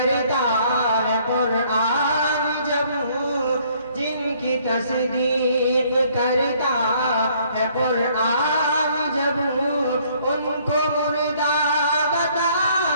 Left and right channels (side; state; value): both; inverted; correlation -0.63